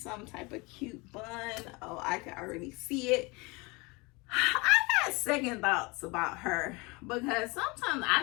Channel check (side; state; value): right; quieter; 26.4 dB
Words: type of cute bun. Oh, I can already see it. I got second thoughts about her, because sometimes